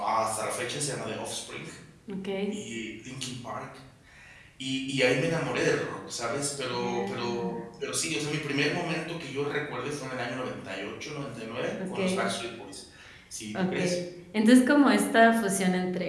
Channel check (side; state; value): both; identical; correlation 1.00